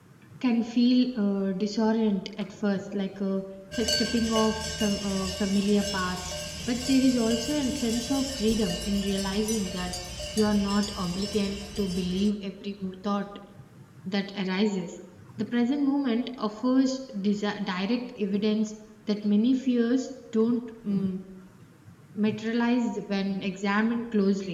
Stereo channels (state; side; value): identical; both; correlation 1.00